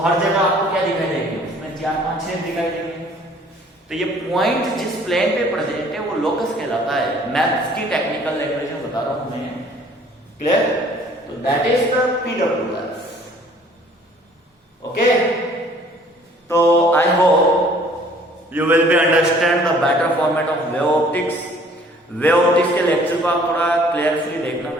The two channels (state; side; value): normal; both; correlation 0.56